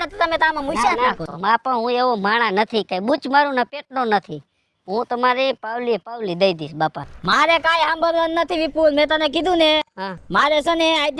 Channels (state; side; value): identical; both; correlation 1.00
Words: તો તમે તો આમાં મૂછા નાખો. માં પણ હું એવો માણા નથી, કઈ બૂચ મારું ને પેટનો નથી. હું તમારી પાવલી પાવલી દઈ દઈશ બાપા. મારે કાંઈ સાંભળવાનું નથી વિપુલ, મેં તને કીધું ને. હા, મારે છે ને